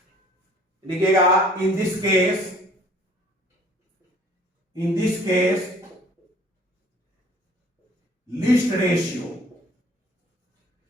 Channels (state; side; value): normal; both; correlation 0.54